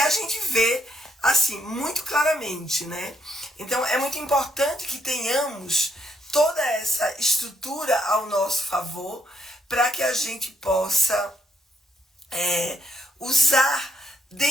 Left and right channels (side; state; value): both; normal; correlation 0.74